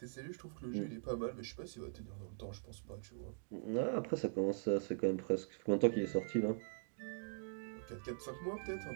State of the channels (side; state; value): left; silent; digital silence